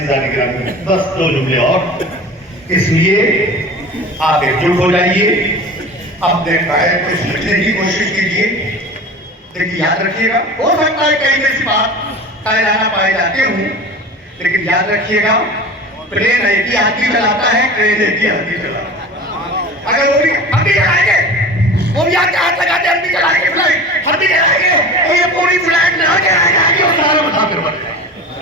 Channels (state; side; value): normal; both; correlation 0.35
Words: گرامی, بس 2 جملے اور. اس لیے آپ ایک جٹ ہو جائیے, اپنے قائد کو سمجھنے کی کوشش کیجیے. لیکن یاد رکھیے گا, ہو سکتا ہے کئی ایسی بات قائدانہ پائے جاتے ہوں, لیکن یاد رکھیے گا پلین ایک ہی ہاتھی چلاتا ہے, ٹرین ایک ہی ہاتھی چلاتا ہے. اگر وہ بھی ہم بھی چلائیں گے, وہ بھی آگے ہاتھ لگاتے ہم بھی چلائیں گے فلائٹ, ہم بھی چلائیں گے تو یہ پوری فلائٹ لگا کے آئے گا اور سارا بتا کر بڑھ جائے.